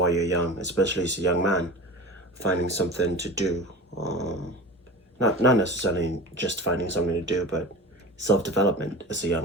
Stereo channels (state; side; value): normal; both; correlation 0.33